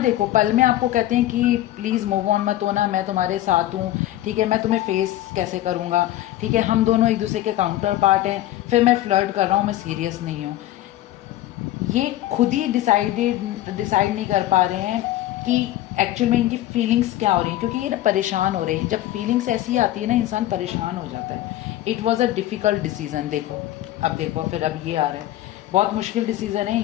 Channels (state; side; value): quieter; right; 14.4 dB